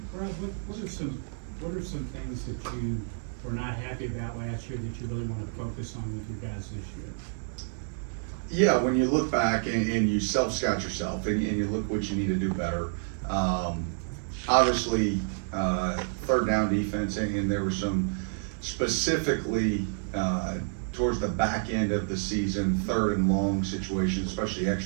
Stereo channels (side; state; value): left; silent; digital silence